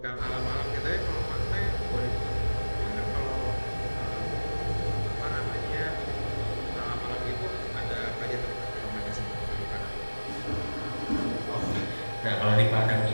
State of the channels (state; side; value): inverted; both; correlation -1.00